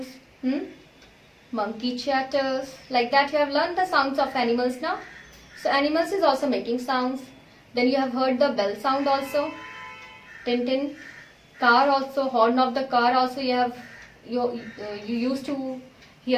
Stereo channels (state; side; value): identical; both; correlation 1.00